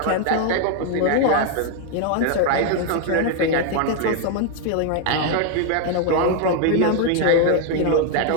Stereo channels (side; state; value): both; different; correlation 0.00